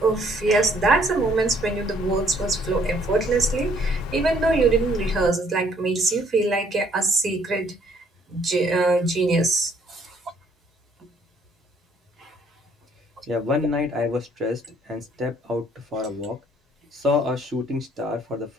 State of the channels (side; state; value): both; normal; correlation 0.64